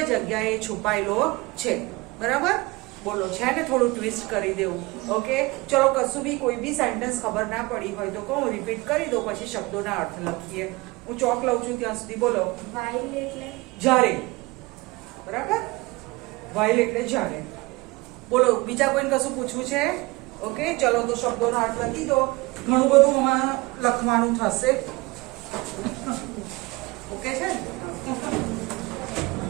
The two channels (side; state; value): left; quieter; 23.2 dB